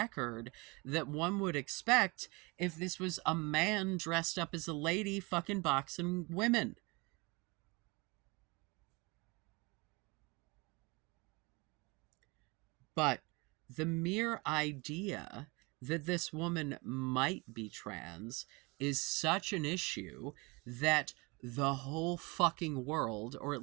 that one would expect if this was a man dressed up as a lady fucking boxing women. But the mere idea that this woman might be trans is such an issue that the whole fucking world, or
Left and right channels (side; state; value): left; quieter; 26.8 dB